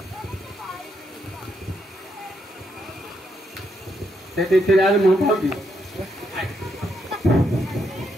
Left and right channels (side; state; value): both; normal; correlation 0.78